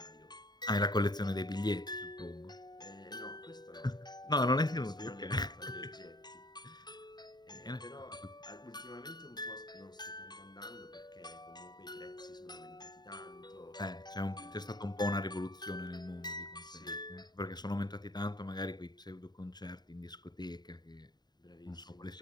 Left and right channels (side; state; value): right; late; 0.20 ms